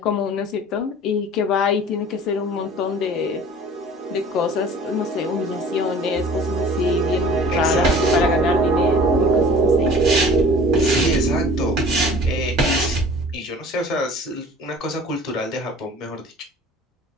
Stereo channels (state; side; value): normal; both; correlation 0.46